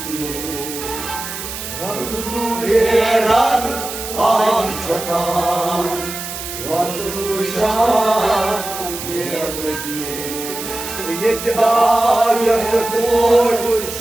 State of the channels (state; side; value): noise; right; hiss, 8 dB below the sound